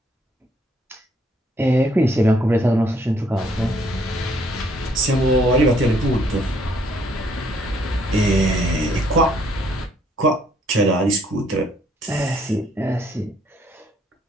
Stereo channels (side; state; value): both; normal; correlation 0.67